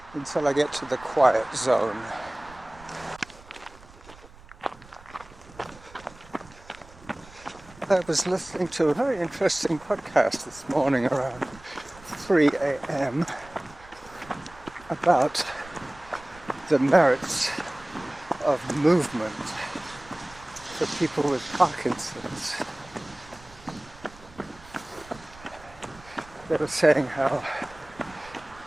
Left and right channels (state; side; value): noise; right; rumble, 22 dB below the sound